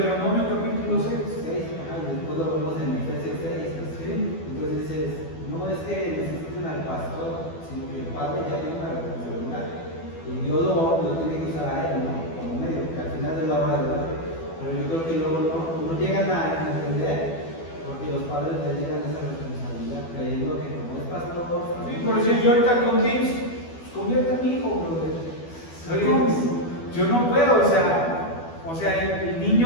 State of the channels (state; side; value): late; right; 12 ms